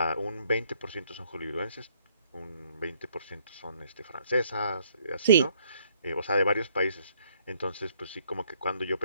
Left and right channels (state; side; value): inverted; both; correlation -0.67